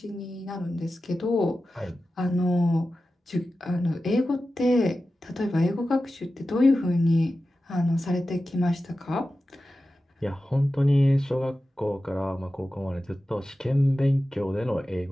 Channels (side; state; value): both; normal; correlation 0.93